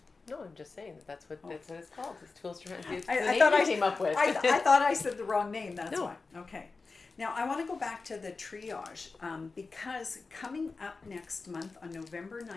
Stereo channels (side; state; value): right; quieter; 4.1 dB